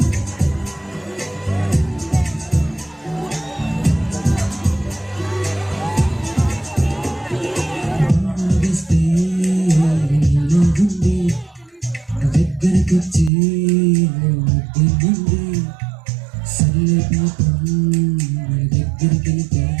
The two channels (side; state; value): left; drops out; at 13.3 s